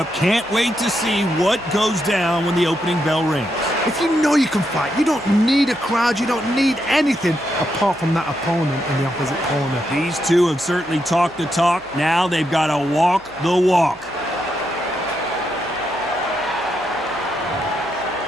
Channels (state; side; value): noise; right; hum, 26 dB below the sound